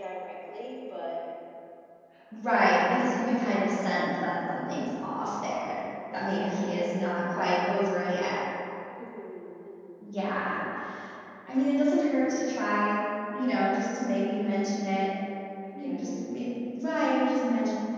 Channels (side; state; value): both; identical; correlation 1.00